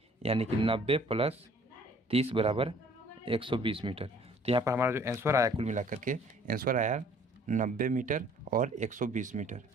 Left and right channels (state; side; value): normal; both; correlation 0.56